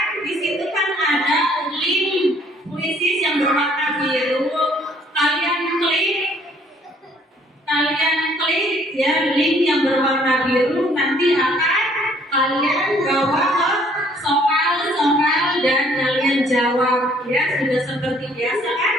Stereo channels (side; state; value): both; normal; correlation 0.61